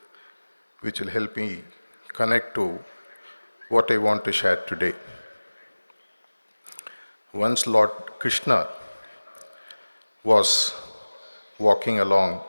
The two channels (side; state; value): both; inverted; correlation -1.00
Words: which will help me connect to what I want to share today. Once Lord Krishna was walking along